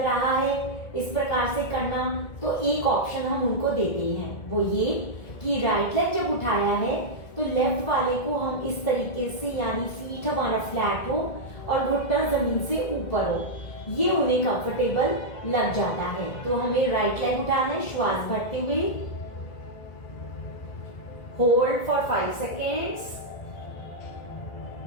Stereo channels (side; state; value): right; late; 1.9 ms